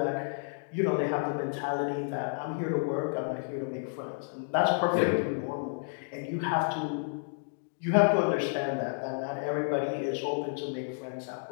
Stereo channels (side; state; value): right; silent; digital silence